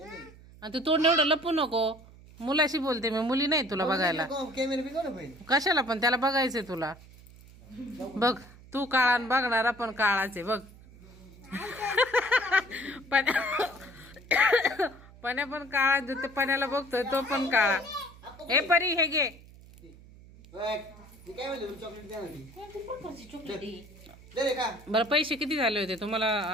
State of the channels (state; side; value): noise; right; hum, 21 dB below the sound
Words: आणि तू तोंड एवढं लपू नको. मुलाशी बोलते मी, मुली नाही तुला बघायला. कॅमेरा बी कोण पाहिजे? कशाला पण त्याला बघायचंय तुला. बघ तू काळा बघणारा पण काळाचे बघ. पण्या पण काळा, ते पण्याला बघतोय तो पण काळा. हे परी हे घे. काय म्हणलं चॉकलेट द्या ना. कोणती प्रकारची चॉकलेट आहे? दे रे का? बरं पैसे किती झाले होते